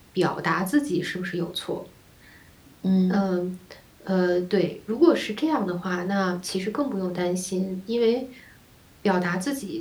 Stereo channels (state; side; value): identical; both; correlation 1.00